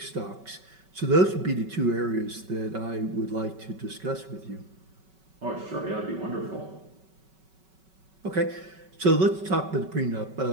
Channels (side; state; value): left; late; 5.3 ms